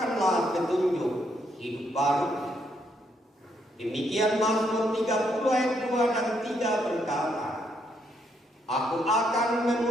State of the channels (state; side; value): normal; both; correlation 0.75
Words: petunjuk hidup baru. Demikian Mazmur 30 ayat 2 dan 3 berkata, Aku akan